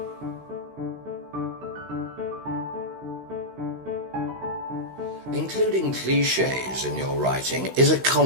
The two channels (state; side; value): late; left; 16 ms